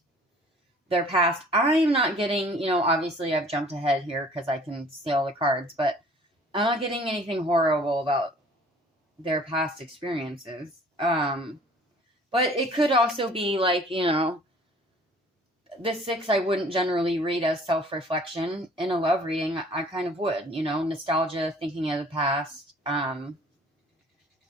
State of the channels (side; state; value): both; normal; correlation 0.52